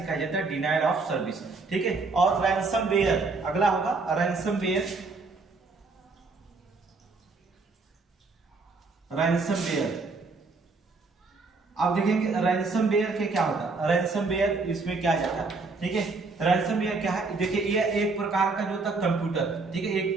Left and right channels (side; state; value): left; quieter; 3.9 dB